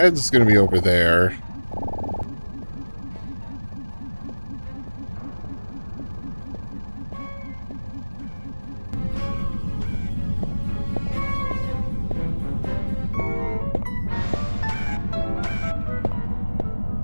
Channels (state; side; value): inverted; both; correlation -1.00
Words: gonna be over there.